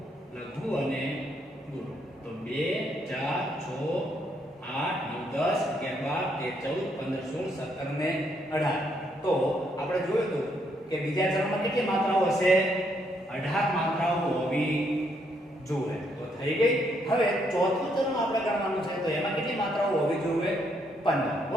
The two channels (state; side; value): normal; both; correlation 0.74